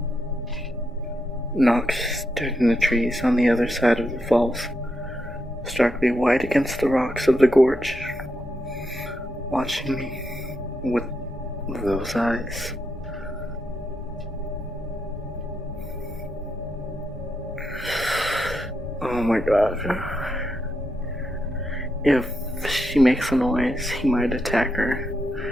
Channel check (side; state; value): both; normal; correlation 0.83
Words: Nox stood in the trees on the other side of the falls, starkly white against the rocks of the gorge, watching me with those eyes. Oh my god. If she makes a noise, he might attack her.